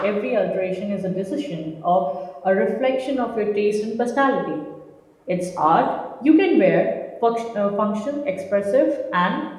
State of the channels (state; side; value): identical; both; correlation 1.00